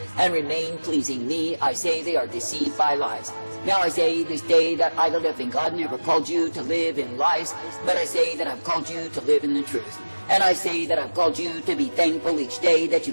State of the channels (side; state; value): both; inverted; correlation -1.00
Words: and remain pleasing me, I say they are deceived by lies. Now I say this day that I, the living God, never called you to live in lies, but I say that I've called you to live in the truth. And I say that I've called you to be thankful each day that you